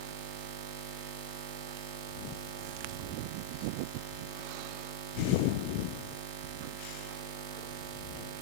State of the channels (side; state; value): left; late; 16 ms